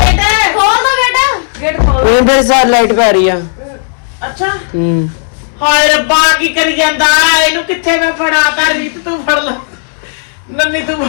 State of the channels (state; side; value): silent; right; digital silence